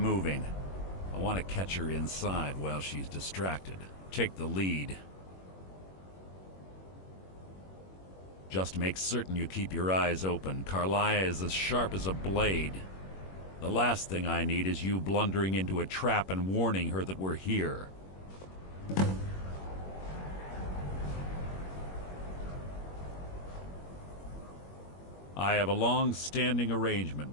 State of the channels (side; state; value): right; late; 21 ms